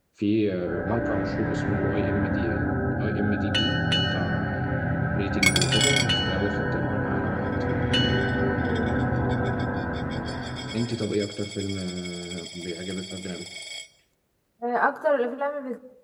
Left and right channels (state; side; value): identical; both; correlation 1.00